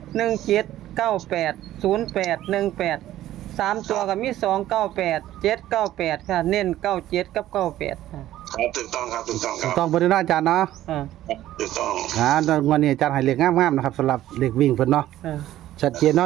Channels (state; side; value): quieter; left; 13.7 dB